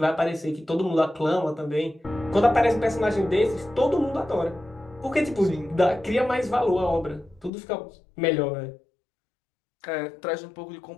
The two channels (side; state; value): right; drops out; at 7.5 s